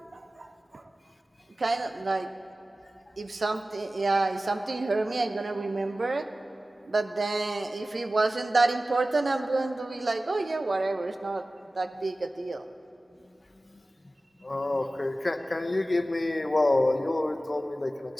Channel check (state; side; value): normal; both; correlation 0.96